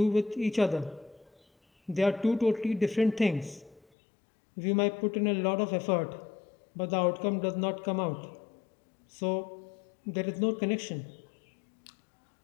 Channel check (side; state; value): right; drops out; at 3.9 s